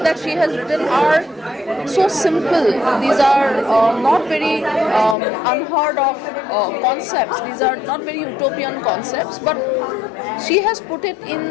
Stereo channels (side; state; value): right; drops out; at 5.2 s